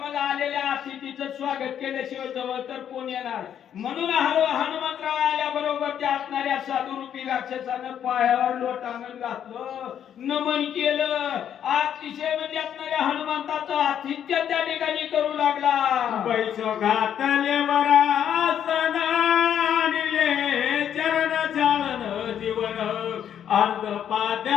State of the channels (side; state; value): right; quieter; 9.4 dB